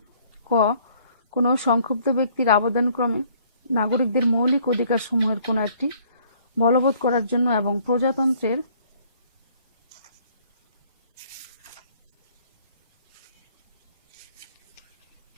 ক কোনো সংক্ষুব্ধ ব্যক্তির আবেদনক্রমে নাগরিকদের মৌলিক অধিকারসমূহের কোনো একটি বলবৎ করার জন্য এবং প্রজাতন্ত্রের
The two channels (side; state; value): both; inverted; correlation -0.60